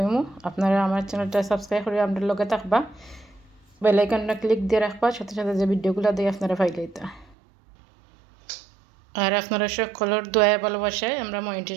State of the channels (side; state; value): left; drops out; at 7.4 s